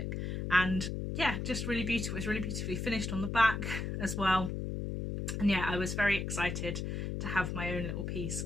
And yeah, just really beautiful. It's really beautifully finished on the back as well. And yeah, I was very excited to have my own little piece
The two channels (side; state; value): left; noise; hum, 3 dB below the sound